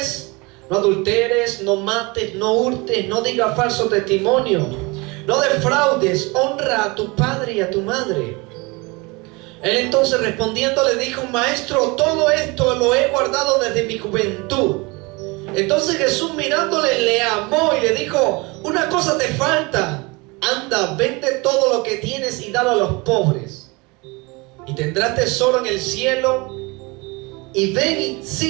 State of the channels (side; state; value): left; quieter; 26.1 dB